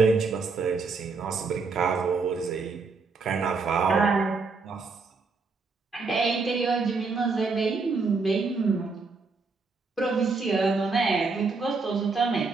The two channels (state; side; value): quieter; left; 4.3 dB